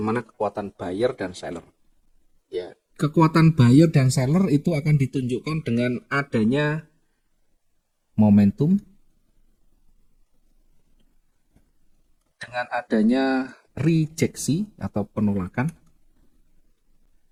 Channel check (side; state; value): both; identical; correlation 1.00